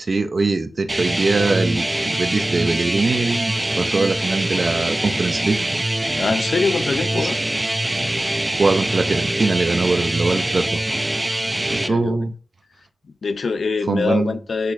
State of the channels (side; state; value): both; normal; correlation 0.95